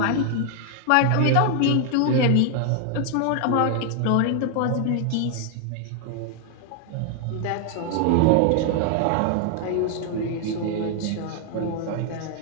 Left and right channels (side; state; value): both; different; correlation 0.00